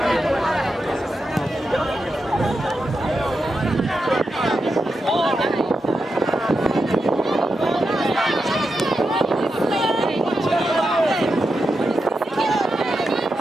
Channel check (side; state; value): both; normal; correlation 0.87